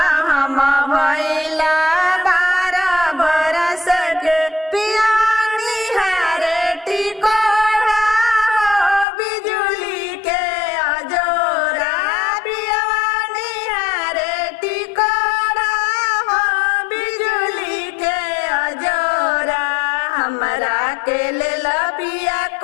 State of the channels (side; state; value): right; drops out; at 9.1 s